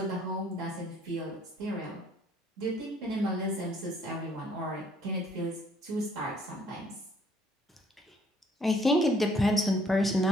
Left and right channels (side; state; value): both; normal; correlation 0.62